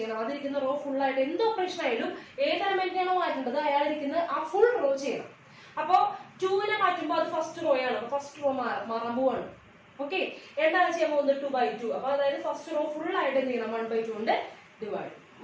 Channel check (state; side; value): identical; both; correlation 1.00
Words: അതിരിക്കുന്ന റോ ഫുൾ ആയിട്ട് എന്ത് ഓപ്പറേഷൻ ആയാലും ഏത് എലമെന്റിനാണോ മാറ്റേണ്ടത് അയാൾ ഇരിക്കുന്ന ആ ഫുൾ റോ ചെയ്യണം. അപ്പൊ 2നെ മാറ്റുമ്പോൾ അത് ഫസ്റ്റ് റോ ആണ്. ഫസ്റ്റ് റോ മാറാൻ പോവാണ്. ഓക്കെ, എന്താണ് ചെയ്യാൻ പോകുന്നത്, 2/2. അപ്പൊ അതായത് ഫസ്റ്റ് റോ ഫുൾ ആയിട്ട് എന്ത് ചെയ്യണം, 1/2 കൊണ്ട് ഡിവൈഡ്